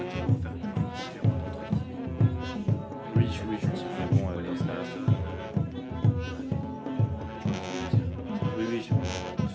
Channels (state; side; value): identical; both; correlation 1.00